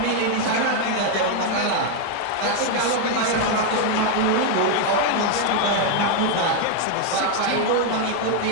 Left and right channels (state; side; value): different; both; correlation 0.01